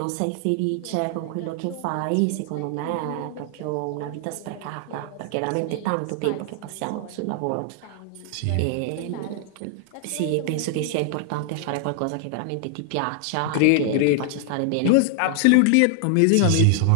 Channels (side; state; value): both; different; correlation 0.00